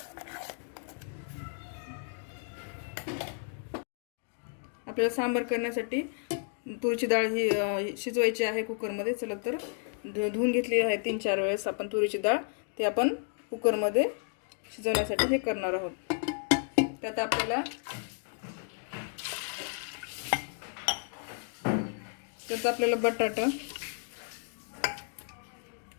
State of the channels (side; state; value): right; silent; 56 dB below the other